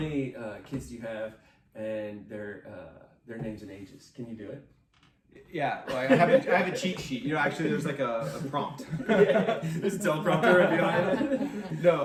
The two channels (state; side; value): identical; both; correlation 1.00